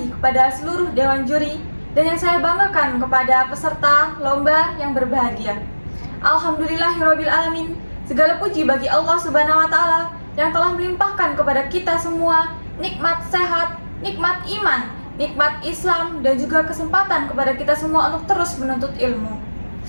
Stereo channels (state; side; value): inverted; both; correlation -1.00